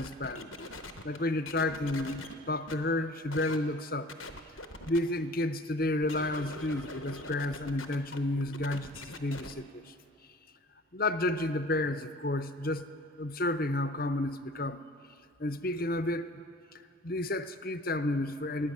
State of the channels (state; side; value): normal; both; correlation 0.47